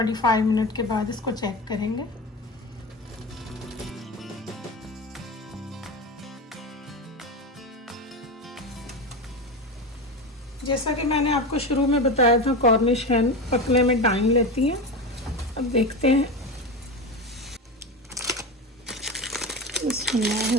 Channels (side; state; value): both; normal; correlation 0.22